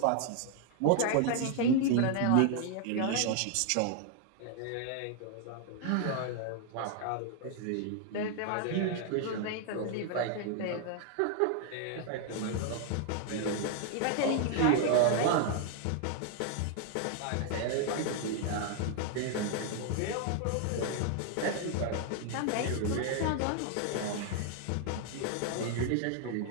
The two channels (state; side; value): different; both; correlation 0.00